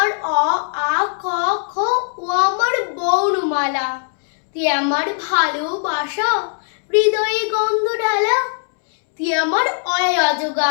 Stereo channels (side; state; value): right; silent; 67 dB below the other